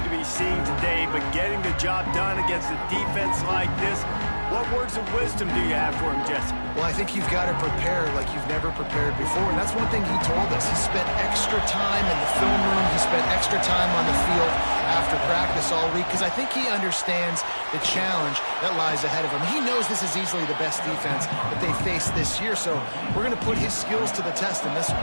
to be seeing today, but getting the job done against a defense like this, what words of wisdom do you have for him, Jesse? Well, I think you've got to prepare like you've never prepared before, and that's one thing he told us. He spent extra time in the film room. He spent extra time on the field after practice all week because I think he understands the challenge that lies ahead of him. He knows this is easily the best defense that they face this year, so we're going to put his skills to the test in this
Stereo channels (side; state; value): both; inverted; correlation -1.00